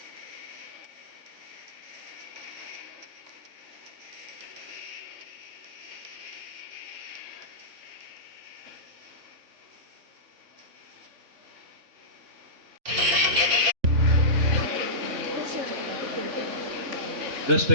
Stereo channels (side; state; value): left; late; 3.5 ms